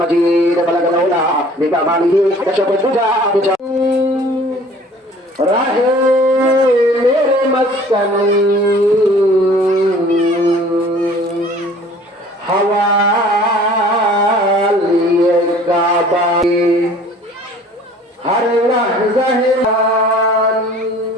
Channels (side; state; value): both; normal; correlation 0.50